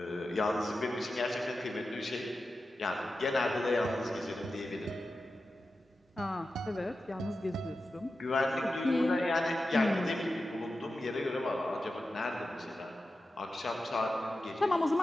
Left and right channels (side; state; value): both; normal; correlation 0.92